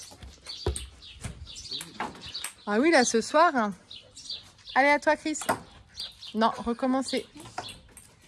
Ah oui, là, ce soir. Hein. Allez, à toi, Chris. Non, recommencer.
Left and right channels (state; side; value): identical; both; correlation 1.00